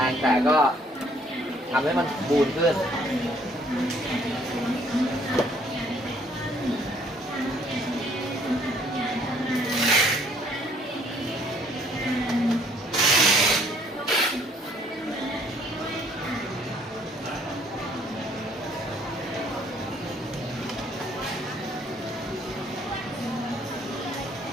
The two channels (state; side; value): normal; both; correlation 0.62